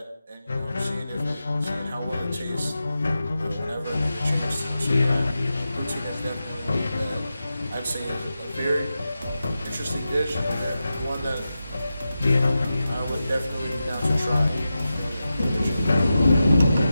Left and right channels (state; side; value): inverted; both; correlation -0.92